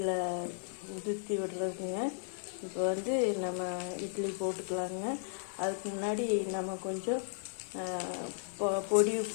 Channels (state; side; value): silent; right; digital silence